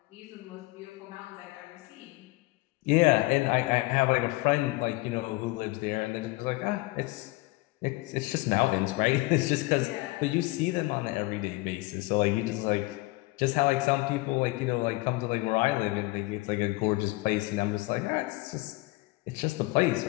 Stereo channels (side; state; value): right; quieter; 21.9 dB